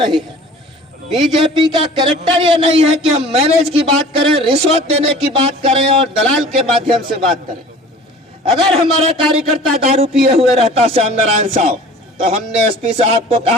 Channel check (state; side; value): normal; both; correlation 0.44